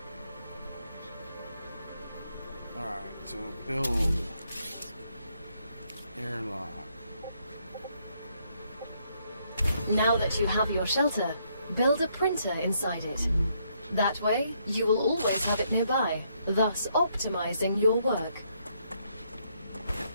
Alright, so build airlock. Now that you have your shelter, build a printer inside it. That way, you will always have it nearby, thus optimizing your work.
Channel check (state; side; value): inverted; both; correlation -0.73